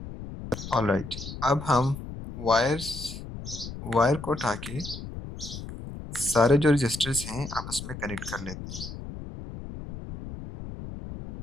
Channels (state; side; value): noise; left; rumble, 10 dB below the sound